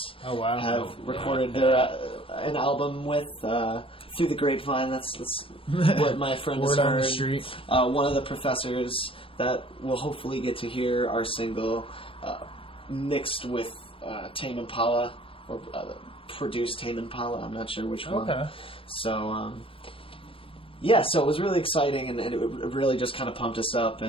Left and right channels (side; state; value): right; late; 0.26 ms